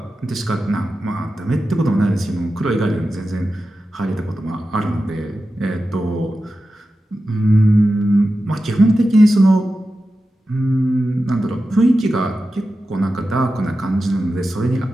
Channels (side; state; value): both; normal; correlation 0.92